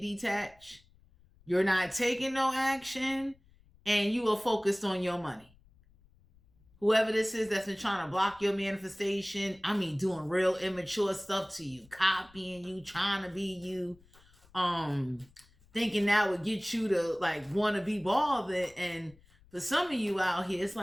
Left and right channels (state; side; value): noise; left; rumble, 29 dB below the sound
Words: You're not taking no action. And you are focused on your money. Whoever this is that's been trying to block your manifestation, doing real immature stuff to you. Copying you, trying to be you. Thinking that would get you to want to be bothered. And for some of you out here, it's